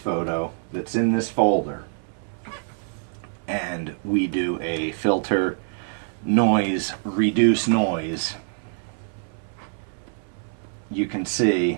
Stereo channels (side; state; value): left; silent; 62 dB below the other